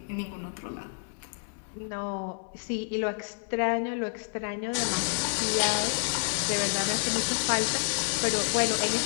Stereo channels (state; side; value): silent; right; digital silence